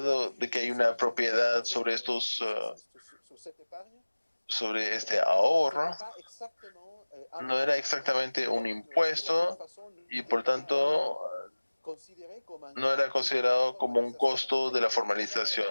de que hay una propiedad sobre sobre este ahorro, no era exactamente un impuesto y por tanto no era considerado como un costo de la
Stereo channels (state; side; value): inverted; both; correlation -1.00